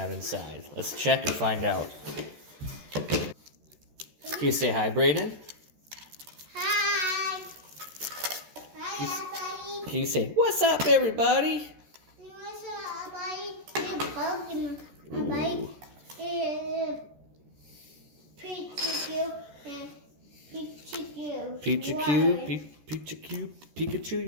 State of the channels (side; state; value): left; late; 14 ms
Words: inside. Let's check and find out. Can you say hi, Brayden? Hi. Hi, everybody. Can you say, what's up, everybody? What's up, everybody? Pokemon. Everybody. Pikachu and Pikachu. Pikachu,